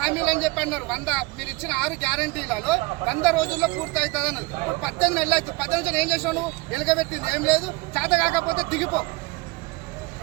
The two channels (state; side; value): quieter; left; 24.2 dB